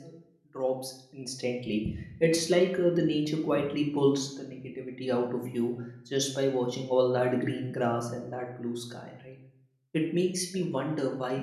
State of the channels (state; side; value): identical; both; correlation 1.00